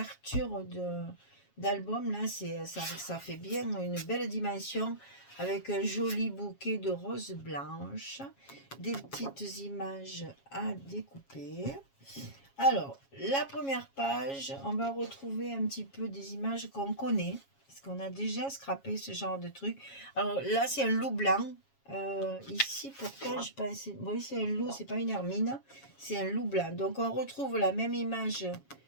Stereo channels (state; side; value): late; right; 7.3 ms